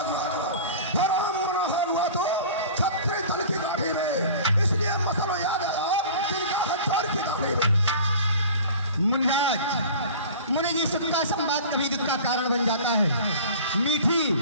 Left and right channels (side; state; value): both; inverted; correlation -0.40